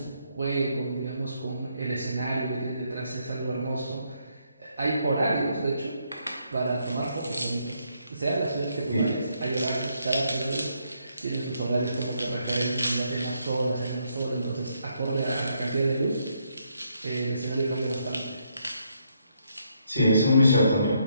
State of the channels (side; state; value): both; inverted; correlation -0.75